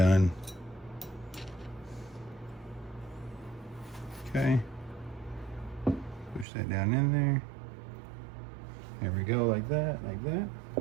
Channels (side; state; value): left; drops out; at 6.5 s